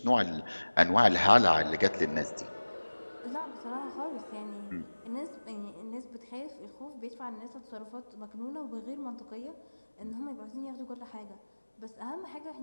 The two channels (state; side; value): inverted; both; correlation -1.00